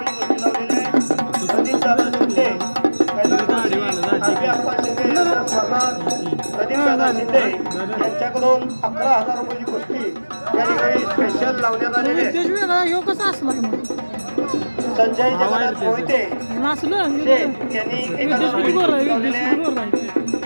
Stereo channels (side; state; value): both; inverted; correlation -1.00